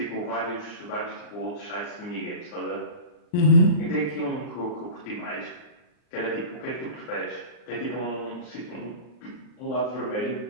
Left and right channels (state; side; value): late; right; 39 ms